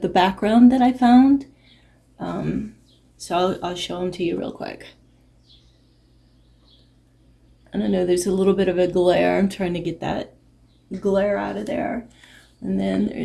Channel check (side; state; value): both; identical; correlation 1.00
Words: background that I found. So I'll show them to you real quick. I don't know, there's a little bit of a glare. I'm trying to get that glare out of there. And then